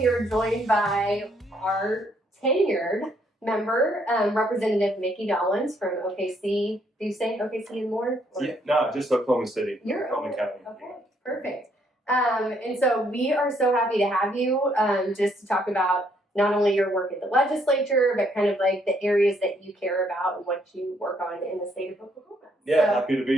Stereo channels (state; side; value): normal; both; correlation 0.70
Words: are joined by our tenured member, Representative Mickey Dollens from OKC. Do you say OKC and more? Yeah, no, just Oklahoma City. You're Oklahoma County. Okay, perfect. And so we are so happy to have you just to talk about not only your work at the legislature, but kind of like the areas that you care about and what you work on in the state of Oklahoma. Yeah, happy to be